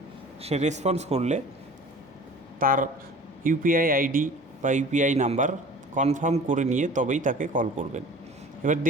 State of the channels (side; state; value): both; normal; correlation 0.43